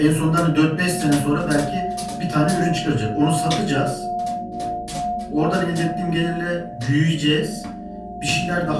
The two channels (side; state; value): both; identical; correlation 1.00